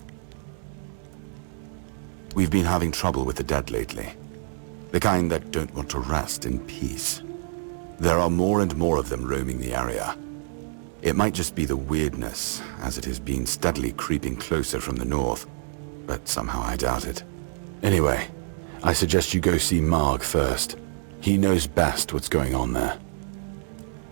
We've been having trouble with the dead lately. The kind that don't want to rest in peace. There are more and more of them roaming the area. It might just be the weirdness, as it has been steadily creeping closer from the north, but somehow I doubt it. Anyway, I suggest you go see Marg first. He knows best what's going on there.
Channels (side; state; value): left; silent; digital silence